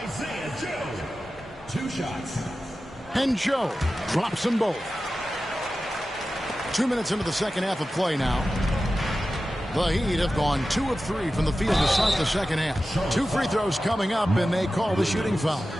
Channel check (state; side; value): normal; both; correlation 0.94